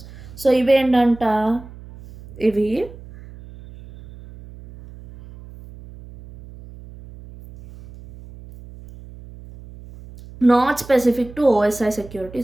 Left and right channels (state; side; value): noise; right; hum, 18 dB below the sound